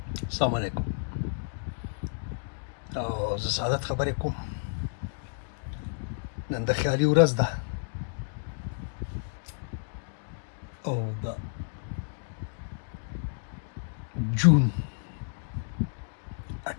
السلام علیکم. او زه سعادت خبرې کوم. نن د خیالي ورځ ده او د جون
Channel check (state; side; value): silent; right; digital silence